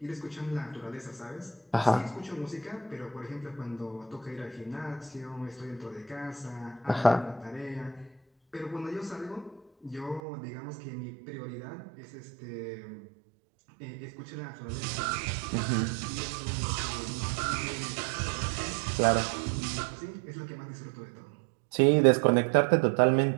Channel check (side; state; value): left; drops out; at 10.2 s